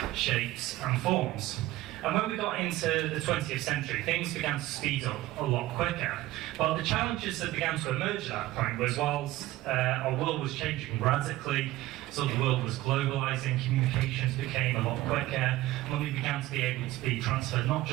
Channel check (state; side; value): quieter; left; 16.8 dB